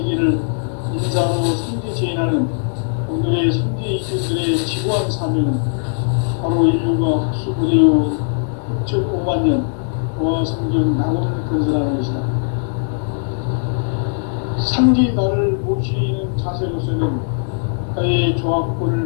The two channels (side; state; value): right; silent; digital silence